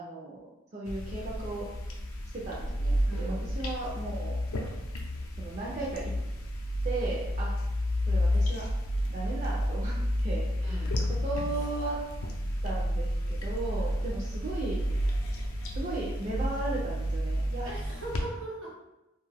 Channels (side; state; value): both; normal; correlation 0.83